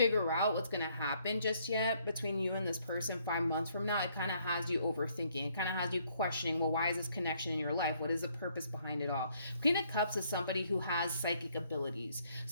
out what's going to happen just yet between you and this person 5 months from now. It kind of has you overthinking. It kind of has you questioning, well, why is this connection in your life? What is the purpose behind it all? Queen of Cups is somebody who has psychic abilities.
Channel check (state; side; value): inverted; both; correlation -0.68